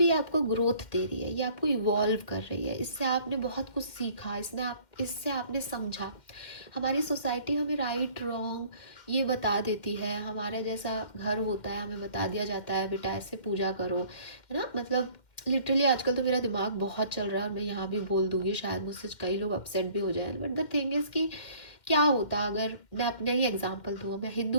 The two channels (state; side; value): late; right; 2.1 ms